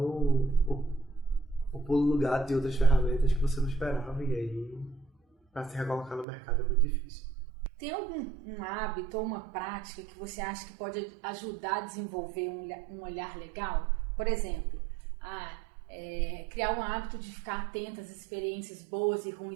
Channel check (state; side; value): drops out; left; at 6.2 s